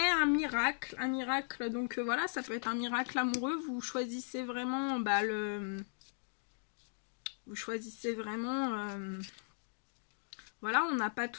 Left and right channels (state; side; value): silent; right; digital silence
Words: un miracle, donc voilà, ça peut être un miracle amoureux, vous choisissez vraiment, vous choisissez vraiment, voilà, on n'a pas